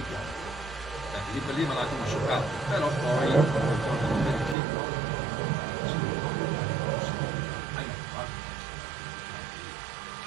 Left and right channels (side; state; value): left; drops out; at 4.5 s